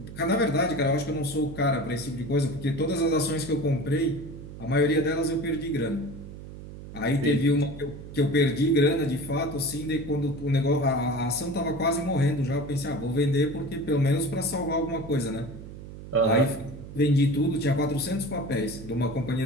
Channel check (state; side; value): noise; right; hum, 13 dB below the sound